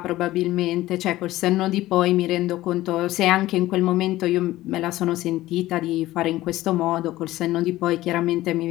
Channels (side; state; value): right; quieter; 16.3 dB